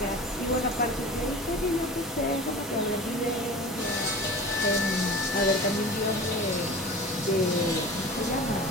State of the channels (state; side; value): normal; both; correlation 0.36